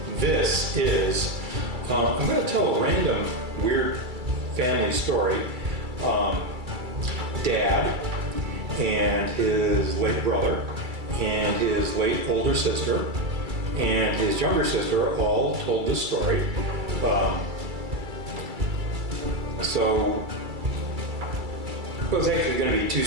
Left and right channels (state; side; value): late; left; 2.3 ms